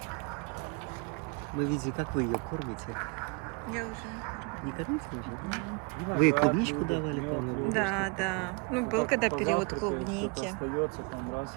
Мы видели, как вы ее кормите. Я уже не кормлю. Не кормите уже? Вы ей клубничку давали, по-моему? Да, да. Ну, был когда период клубники. Остается, там, раз,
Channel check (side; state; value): left; quieter; 31.5 dB